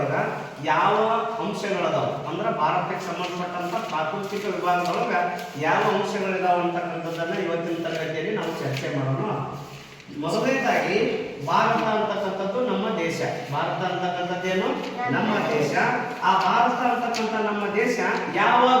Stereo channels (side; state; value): both; identical; correlation 1.00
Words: ಯಾವ ಅಂಶಗಳದಾವ ಅಂದ್ರೆ ಭಾರತಕ್ಕೆ ಸಂಬಂಧಪಟ್ಟಂತ ಪ್ರಾಕೃತಿಕ ವಿಭಾಗದೊಳಗ ಯಾವ ಅಂಶಗಳಿದಾವ ಅಂತಕ್ಕಂಥದ್ದನ್ನ ಇವತ್ತಿನ ತರಗತಿಯಲ್ಲಿ ನಾವು ಚರ್ಚೆ ಮಾಡೋಣ. ಮೊದಲನೇದಾಗಿ ಭಾರತ ಅಂತಕ್ಕಂಥದ್ದು ನಮ್ಮ ದೇಶ. ಭಾರತ ಅಂತಕ್ಕಂಥದ್ದೇನು ನಮ್ಮ ದೇಶ. ಆ ಭಾರತ ಅಂತಕ್ಕಂಥ ನಮ್ಮ ದೇಶ ಯಾವ